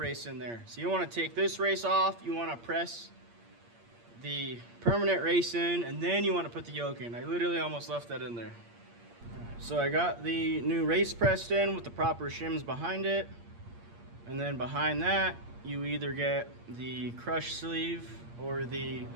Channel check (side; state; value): left; late; 8.6 ms